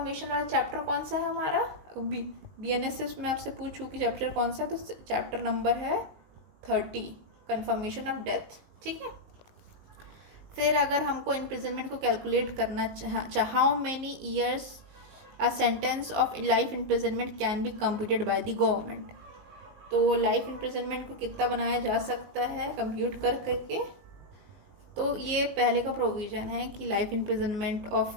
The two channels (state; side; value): late; left; 19 ms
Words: वाला चैप्टर कौन सा है हमारा, बीएनएसएस में आपसे पूछूँ कि चैप्टर कौन सा है, तो चैप्टर नंबर है 30, कंफर्मेशन ऑफ डेथ। ठीक है, फिर अगर हमको इम्प्रिजनमेंट को कैलकुलेट करना how many years a sentence of life imprisonment can be computed by the government, तो लाइफ इम्प्रिजनमेंट को कितना बनाया जा सकता है कंप्यूट कर करके, तो ये पहले का प्रोविज़न है कि लाइफ इम्प्रिजनमेंट